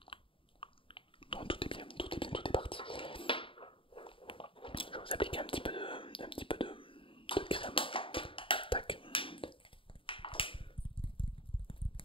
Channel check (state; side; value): late; right; 0.25 ms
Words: Non, tout est bien, tout est bien, tout est parti. Je vais vous appliquer un petit peu de crème. Tac.